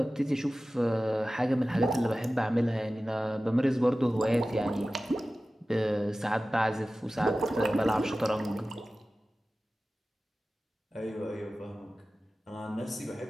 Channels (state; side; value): normal; both; correlation 0.96